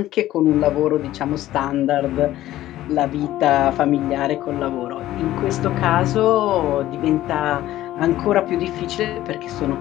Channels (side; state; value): right; quieter; 14.5 dB